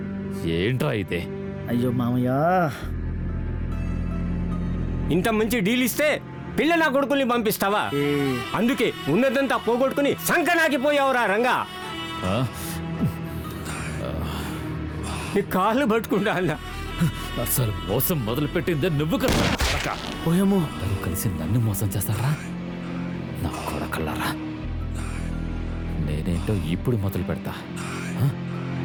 ఏంట్రా అయితే? అయ్యో మామయ్య, ఇంత మంచి డీల్ ఇస్తే పిల్ల నా కొడుకుల్ని పంపిస్తావా? అందుకే ఉన్నదంతా పోగొట్టుకుని సంకనాకిపోయావురా రంగా. నీ కాళ్ళు పట్టుకుంటా అన్నా. అసలు మోసం మొదలు పెట్టిందే నువ్వు కదా. పోయేమో కలిసి నన్ను మోసం చేస్తారా నా కొడకల్లారా? నేనేంటో ఇప్పుడు మొదలు పెడతా.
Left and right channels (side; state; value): both; identical; correlation 1.00